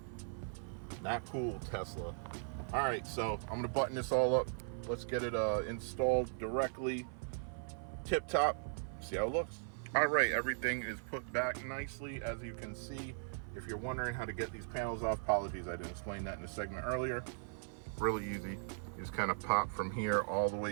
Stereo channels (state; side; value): silent; left; 52 dB below the other